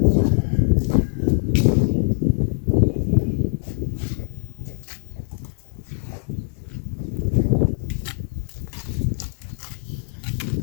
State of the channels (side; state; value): right; silent; digital silence